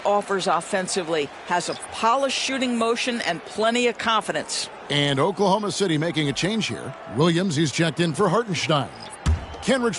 offensively. Has a polished shooting motion and plenty of confidence. And Oklahoma City making a change here. Williams, he's checked in for Hartenstein.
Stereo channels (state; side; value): identical; both; correlation 1.00